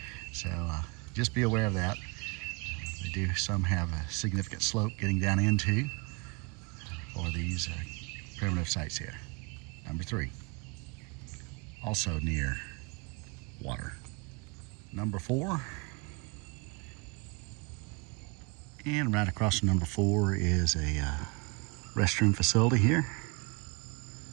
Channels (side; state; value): left; quieter; 29.8 dB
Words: so just be aware of that. They do some have a significant slope getting down into for these primitive sites here. Number 3, also near water. Number 4, and right across from number 4 is a restroom facility here.